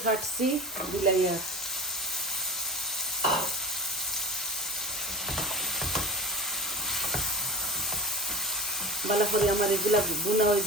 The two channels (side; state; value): both; normal; correlation 0.36